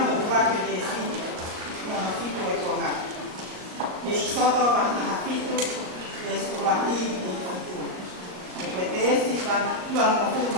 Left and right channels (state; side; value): late; left; 38 ms